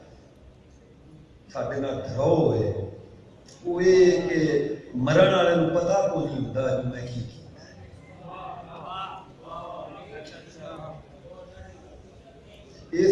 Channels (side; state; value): both; identical; correlation 1.00